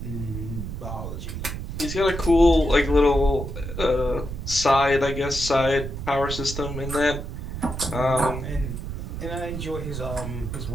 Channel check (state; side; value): noise; right; rumble, 6 dB below the sound